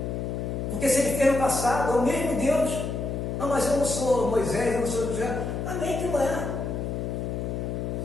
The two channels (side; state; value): left; noise; hum, 3 dB below the sound